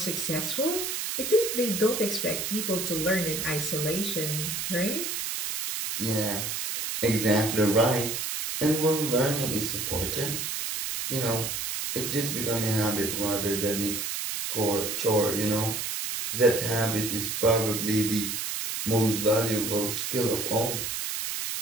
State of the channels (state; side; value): noise; right; hiss, 3 dB below the sound